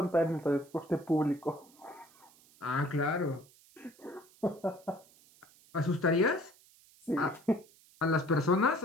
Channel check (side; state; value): right; noise; hiss, 27 dB below the sound